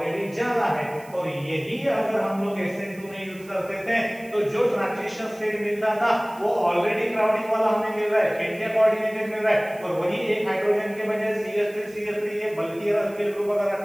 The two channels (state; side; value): noise; right; hiss, 24 dB below the sound